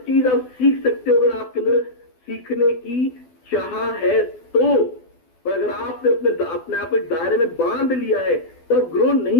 चीज आप सीख सकते हो अगर आपके अंदर सीखने की चाह है तो। पर अगर आपने अपने आप एक दायरे में बांध लिया है तो आप ग्रो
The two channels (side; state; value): right; late; 12 ms